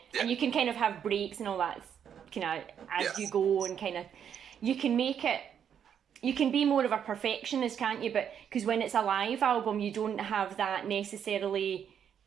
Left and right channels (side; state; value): left; quieter; 8.4 dB